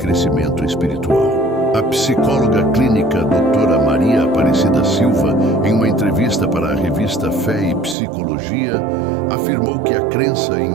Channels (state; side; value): drops out; left; at 8.0 s